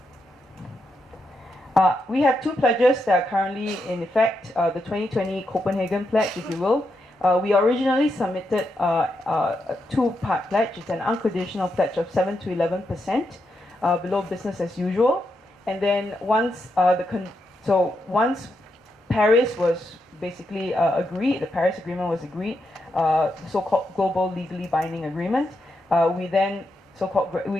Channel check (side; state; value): both; normal; correlation 0.83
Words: We have two pledges that are currently in effect, the 2020 Copenhagen Pledge, if you will, We originally submitted a two-part pledge. It's an unconditional pledge of 7 to 11% below business as usual. And then once once Paris was basically agreed, the Paris Agreement was agreed, the so-called global legally binding agreement, we then